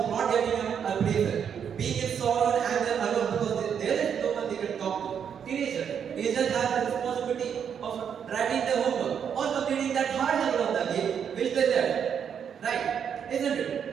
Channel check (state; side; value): quieter; left; 7.8 dB